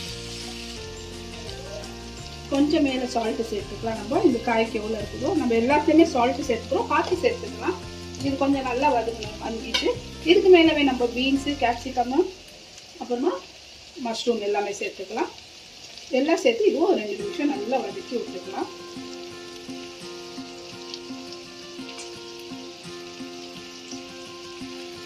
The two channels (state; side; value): identical; both; correlation 1.00